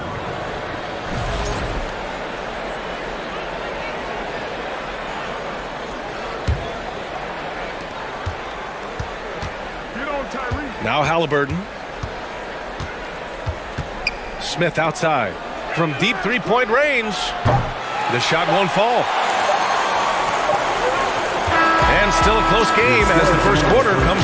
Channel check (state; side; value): identical; both; correlation 1.00